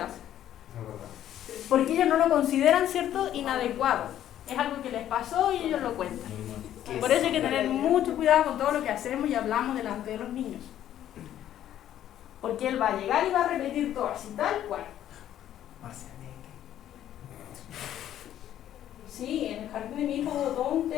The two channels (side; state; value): right; quieter; 11.5 dB